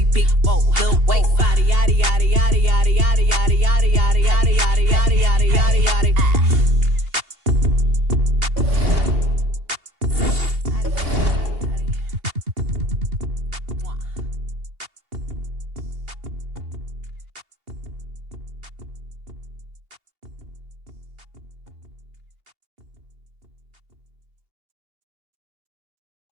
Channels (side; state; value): left; late; 2.8 ms